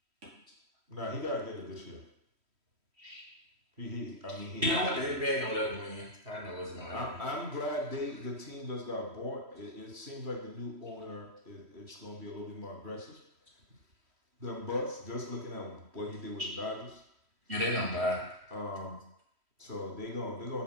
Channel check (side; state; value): left; late; 3.1 ms